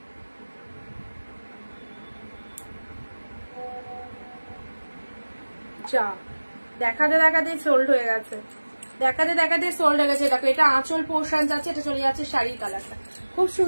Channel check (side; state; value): both; inverted; correlation -1.00